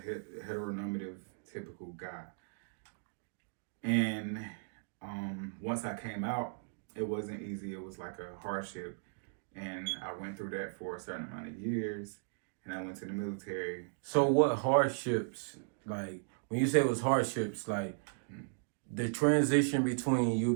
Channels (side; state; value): left; silent; digital silence